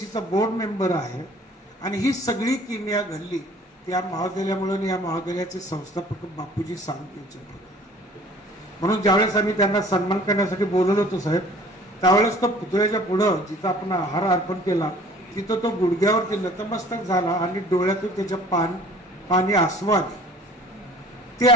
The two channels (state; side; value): normal; both; correlation 0.50